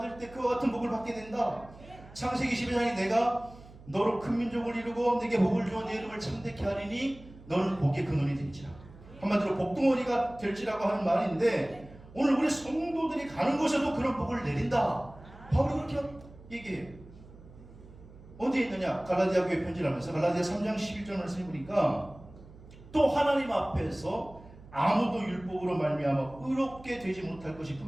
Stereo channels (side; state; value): right; noise; hum, 20 dB below the sound